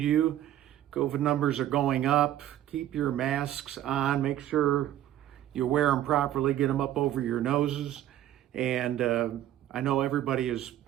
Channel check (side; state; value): left; quieter; 12.5 dB